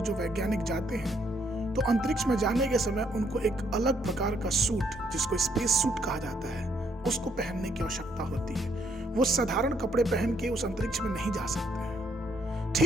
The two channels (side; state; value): both; normal; correlation 0.70